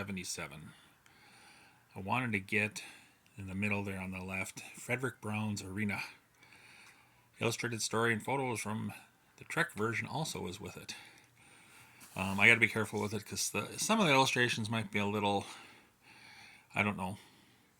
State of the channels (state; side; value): identical; both; correlation 1.00